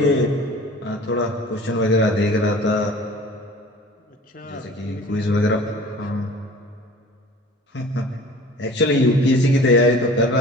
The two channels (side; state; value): both; normal; correlation 0.44